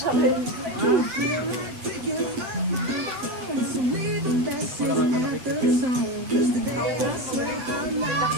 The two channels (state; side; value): late; left; 8.2 ms